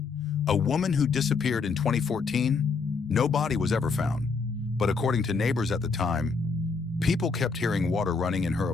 a woman who disappeared in 2014. No body was ever found, but according to neighbors at the time, people kept hearing water running in her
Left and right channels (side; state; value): right; quieter; 4.7 dB